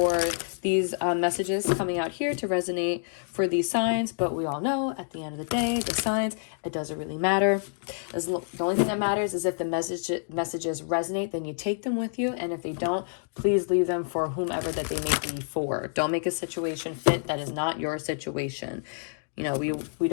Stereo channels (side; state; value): right; silent; digital silence